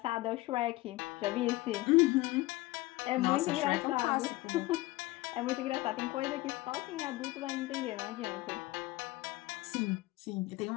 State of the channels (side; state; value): right; quieter; 19.1 dB